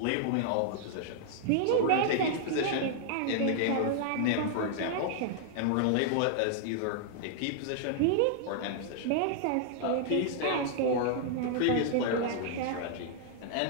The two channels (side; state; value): both; different; correlation -0.01